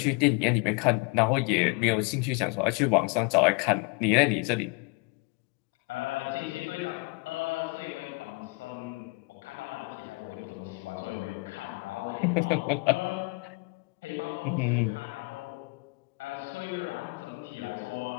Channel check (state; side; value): quieter; right; 29.3 dB